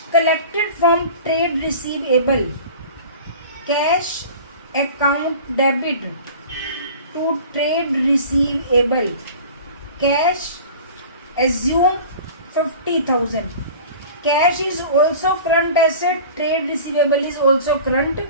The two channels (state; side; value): inverted; both; correlation -0.41